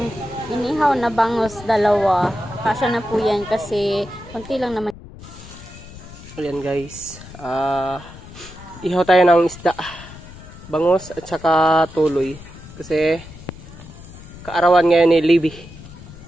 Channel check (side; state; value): left; noise; rumble, 17 dB below the sound